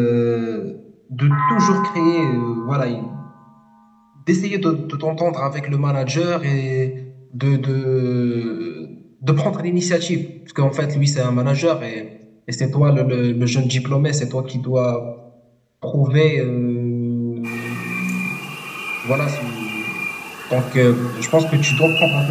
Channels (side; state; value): both; identical; correlation 1.00